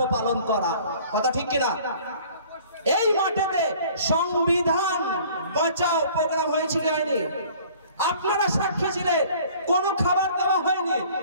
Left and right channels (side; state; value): both; inverted; correlation -0.51